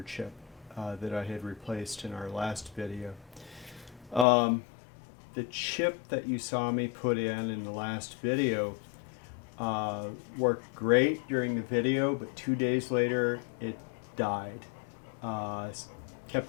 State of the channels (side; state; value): right; drops out; at 4.2 s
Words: chip that I had replaced in our last video. The chip that you saw me put in the last video worked great during the video, but 2 days later it died.